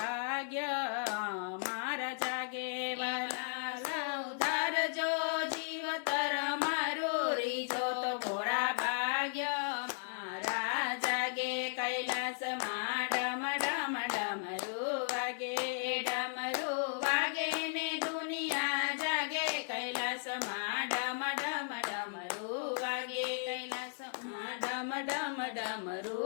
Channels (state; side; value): silent; right; digital silence